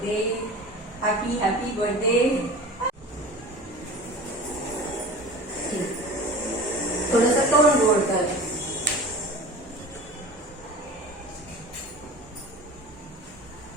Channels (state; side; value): normal; both; correlation 0.37